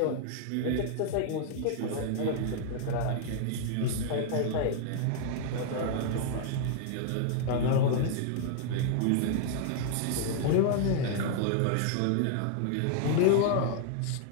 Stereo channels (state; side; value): different; both; correlation 0.00